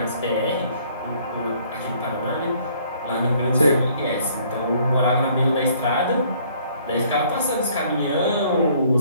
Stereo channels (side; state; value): both; inverted; correlation -0.61